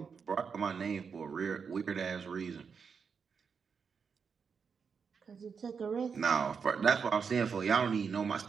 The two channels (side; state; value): left; quieter; 6.0 dB